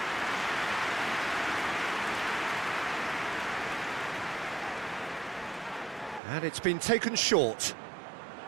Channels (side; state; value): left; drops out; at 6.2 s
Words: And it's been taken short.